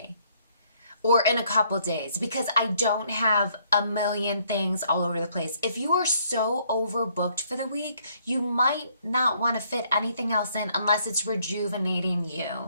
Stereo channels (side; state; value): both; inverted; correlation -0.67